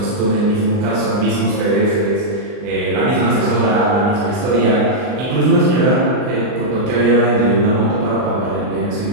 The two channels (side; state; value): left; late; 39 ms